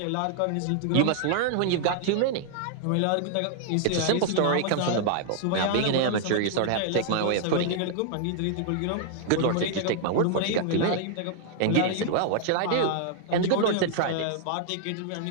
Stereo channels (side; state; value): both; different; correlation -0.01